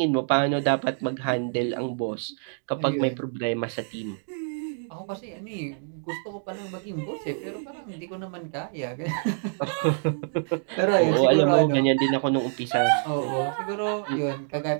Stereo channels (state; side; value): silent; left; digital silence